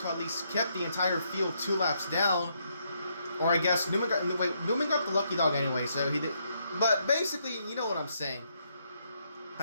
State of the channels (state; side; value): inverted; both; correlation -0.75